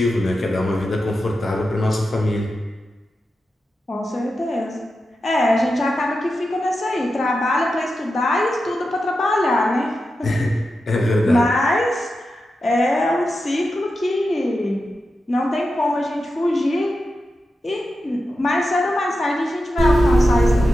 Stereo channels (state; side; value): normal; both; correlation 0.90